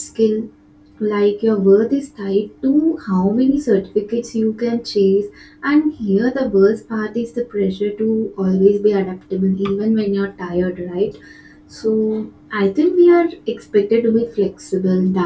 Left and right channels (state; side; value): identical; both; correlation 1.00